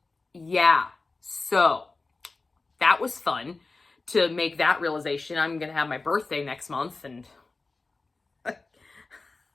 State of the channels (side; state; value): right; quieter; 3.7 dB